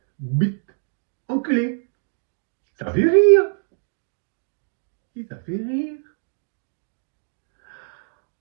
bite, enculé. Ça fait rire. Et ça fait rire.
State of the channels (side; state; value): left; silent; digital silence